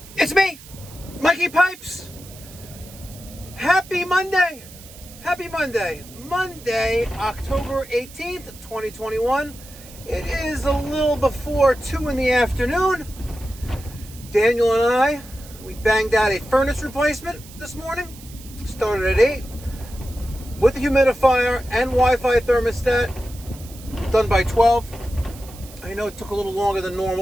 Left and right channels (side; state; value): right; noise; hiss, 19 dB below the sound